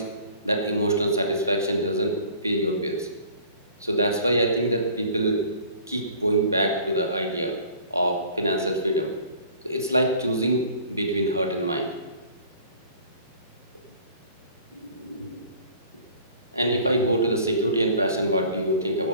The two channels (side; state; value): both; inverted; correlation -0.48